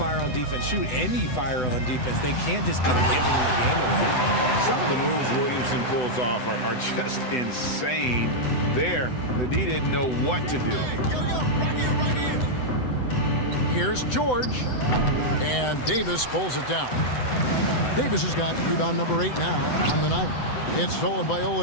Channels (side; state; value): right; late; 7.9 ms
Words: on defense. Shoot, any fire on defense. They can't just be giving the game away. Some of the moves Williamson pulls off are just insane. There, the D didn't know what to do. Here's George. And Davis pulls it down. Davis has got rebound number 8 now on the night. It's stolen by